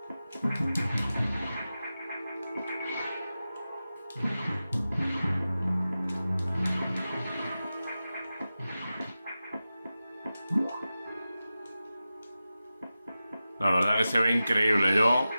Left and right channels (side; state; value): both; inverted; correlation -0.94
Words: La verdad que se ve increíble. Yo,